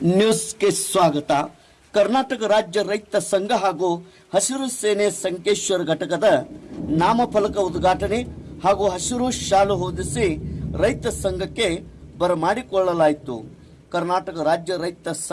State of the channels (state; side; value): identical; both; correlation 1.00